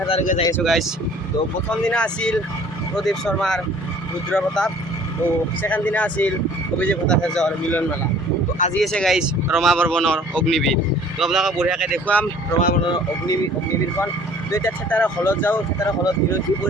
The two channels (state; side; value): normal; both; correlation 0.52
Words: যাই আছোঁ গাইছ। তো প্ৰথম দিনা আছিল প্ৰদীপ শৰ্মাৰ ৰুদ্ৰ প্ৰতাপ, তো ছেকেণ্ড দিনা আছিল অভিজিৎ ভট্টাচাৰ্যৰ মিলন মেলা। তো আজি আছে গাইছ ৰমা বৰ্মনৰ অগ্নিবীৰ। তো আপোনালোকক বঢ়িয়াকৈ দেখুৱাম ৰমা বৰ্মনৰ অগ্নিবীৰখন। তো এতিয়া থেতাৰৰ হলত যাওঁ, থেতাৰৰ হলত দিনত কি